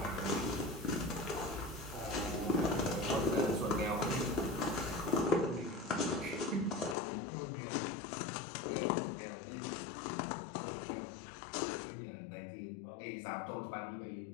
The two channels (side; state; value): right; drops out; at 7.0 s